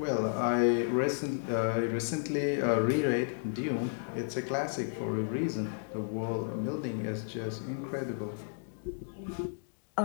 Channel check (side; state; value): right; silent; digital silence